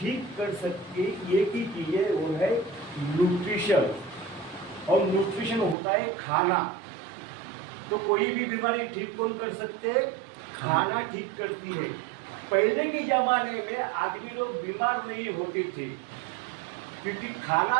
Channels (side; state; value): left; drops out; at 5.8 s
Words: कर सकती है, एक ही चीज़ है, वो है न्यूट्रिशन। और न्यूट्रिशन होता है खाना। तो कोई भी बीमारी ठीक कौन कर सकते हैं? खाना ठीक करती है। पहले के ज़माने में आदमी लोग बीमार नहीं होते थे क्योंकि खाना